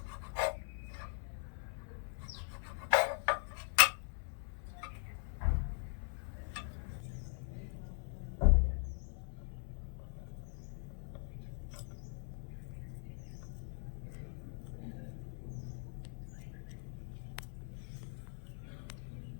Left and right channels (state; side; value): silent; right; 50 dB below the other